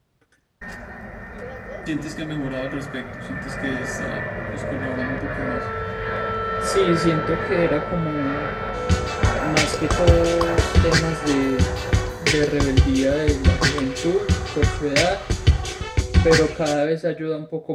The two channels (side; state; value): both; identical; correlation 1.00